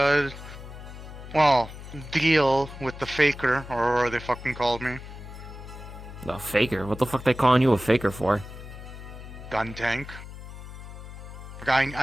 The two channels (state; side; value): noise; left; hum, 13 dB below the sound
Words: deal with the faker, or whatever they fucking called me. The faker? What the fuck they calling you a faker for? Gun tank.